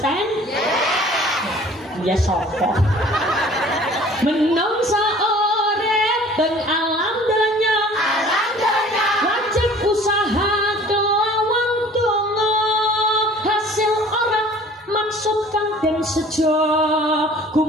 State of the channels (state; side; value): normal; both; correlation 0.49